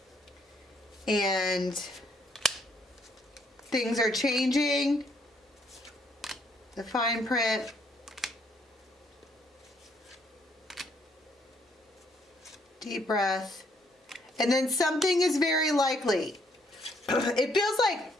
And things are changing. The fine print. Deep breath. And then something is very likely. It feels like,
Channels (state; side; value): normal; both; correlation 0.69